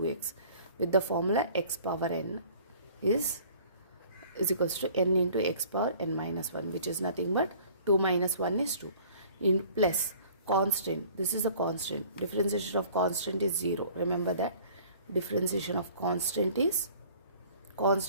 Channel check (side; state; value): both; inverted; correlation -0.51